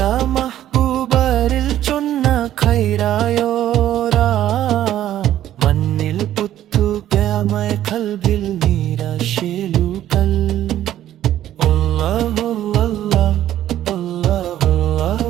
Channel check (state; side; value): quieter; left; 12.3 dB